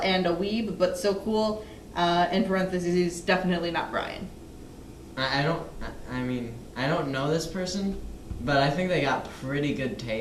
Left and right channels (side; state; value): both; identical; correlation 1.00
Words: a weeb, but so cool, in parentheses, he's definitely not Brian. I don't know this person, but I think they got pretty good